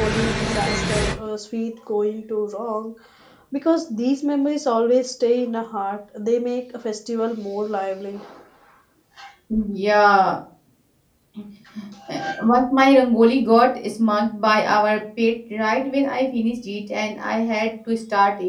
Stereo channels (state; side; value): identical; both; correlation 1.00